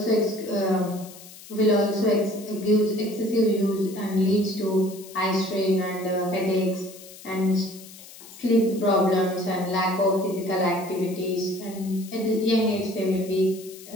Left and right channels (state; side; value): noise; left; hiss, 18 dB below the sound